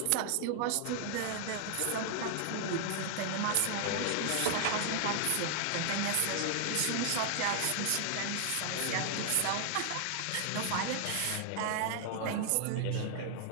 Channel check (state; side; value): different; both; correlation 0.00